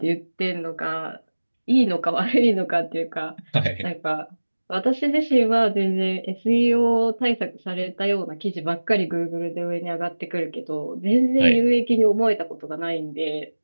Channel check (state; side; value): inverted; both; correlation -1.00